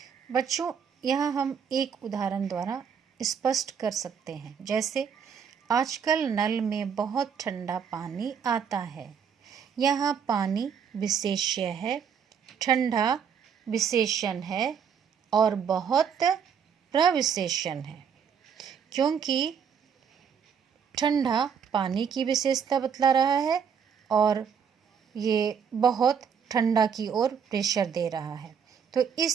बच्चों, यहाँ हम एक उदाहरण द्वारा स्पष्ट कर सकते हैं, जैसे आजकल नल में बहुत ठंडा पानी आता है। यहाँ पानी विशेष्य है, ठंडा विशेषण है और बहुत प्रविशेषण है, क्योंकि ठंडा पानी की विशेषता बतला रहा है और ये बहुत ठंडा की ओर प्रेशर दे रहा है। तो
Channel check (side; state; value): left; quieter; 7.2 dB